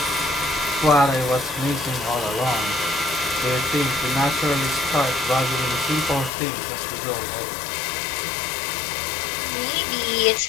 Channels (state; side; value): drops out; right; at 6.3 s